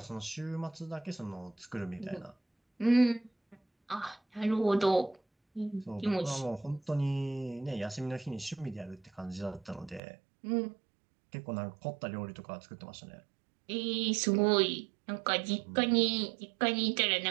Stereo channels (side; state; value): left; drops out; at 10.0 s